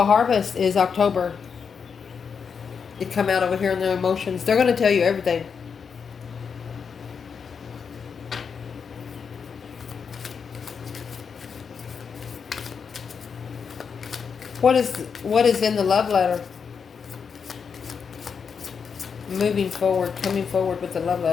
harvest is October. It come out over here in their emotions. They're going to tell you everything. What is in the love letter? Moving forward, coming forward with the love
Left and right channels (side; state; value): right; quieter; 6.2 dB